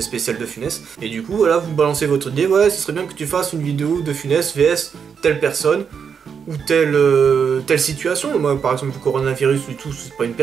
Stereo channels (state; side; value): quieter; left; 6.8 dB